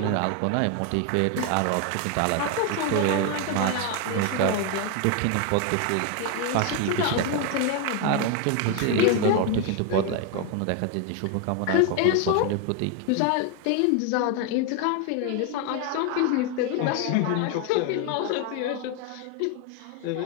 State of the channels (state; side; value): different; both; correlation 0.01